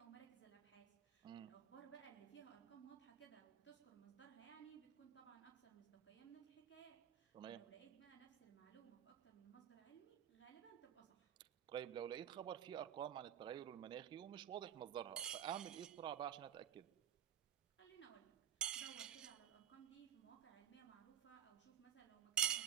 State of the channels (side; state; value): left; quieter; 9.7 dB